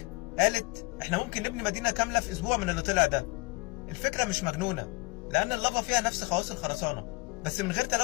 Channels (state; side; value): quieter; right; 26.8 dB